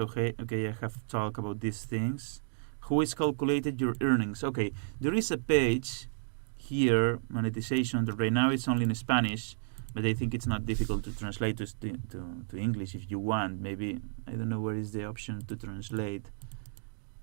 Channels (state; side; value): silent; left; digital silence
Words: I have talked about these things. Who is calculated your earnings? Okay, there is a page here, monetization, that right now it's only in Spanish, but I think it's not difficult to translate to English if you want. Maybe, I don't know where is the option to translate.